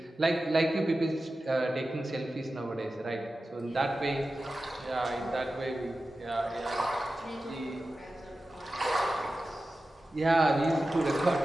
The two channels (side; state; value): both; normal; correlation 0.94